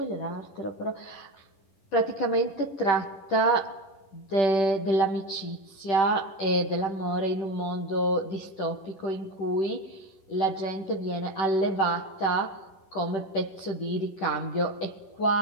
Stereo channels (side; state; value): right; late; 10 ms